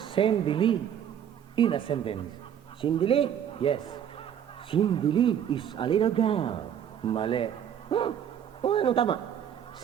sendili in a sentence. Sindili. Yes. Sindili is a little girl. Mali. Huh? O, ano tama?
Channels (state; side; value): quieter; left; 9.3 dB